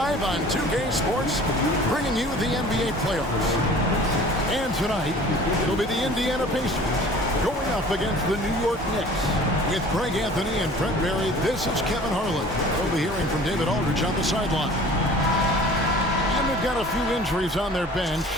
on 2K Sports, bringing you the NBA playoffs. And tonight, it'll be the Indiana Pacers going up against the New York Knicks. With Greg Anthony and Brent Barry, this is Kevin Harlan. We'll be hearing from David Aldridge on the sideline. And they've got a few injuries on their bench.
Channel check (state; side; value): normal; both; correlation 0.46